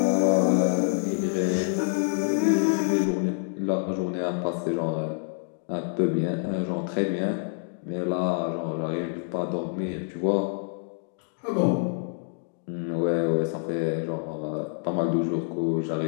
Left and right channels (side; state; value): right; silent; digital silence